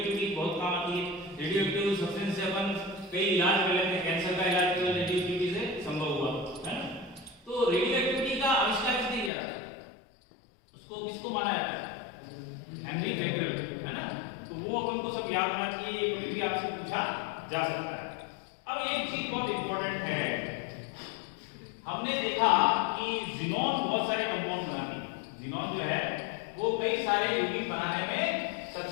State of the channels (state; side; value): drops out; right; at 9.3 s